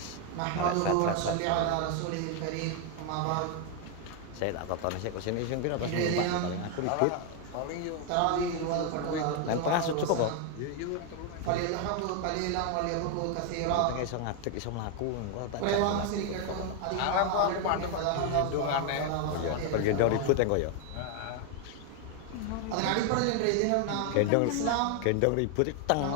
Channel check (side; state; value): both; different; correlation 0.01